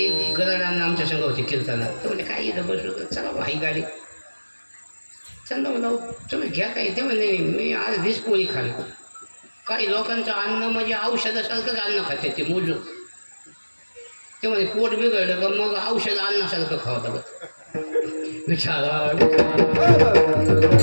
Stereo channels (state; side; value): inverted; both; correlation -1.00